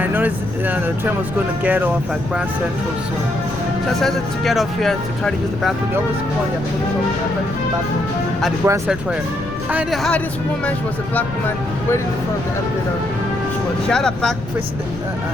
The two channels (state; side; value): noise; left; rumble, 11 dB below the sound